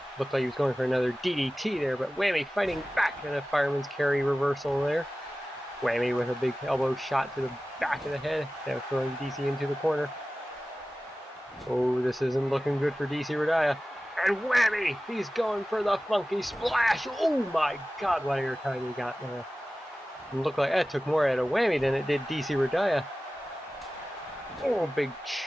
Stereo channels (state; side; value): normal; both; correlation 0.96